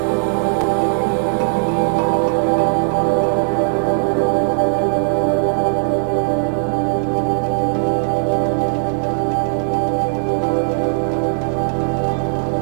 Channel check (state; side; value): silent; left; 60 dB below the other